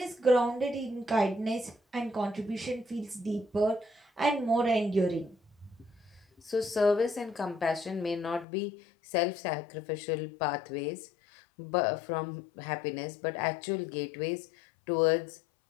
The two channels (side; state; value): right; drops out; at 8.5 s